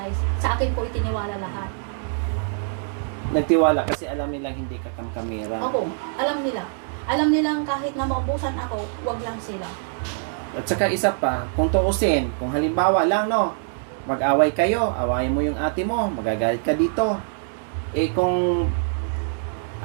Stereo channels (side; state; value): left; silent; digital silence